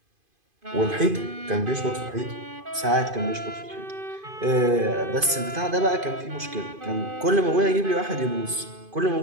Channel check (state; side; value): late; left; 2.5 ms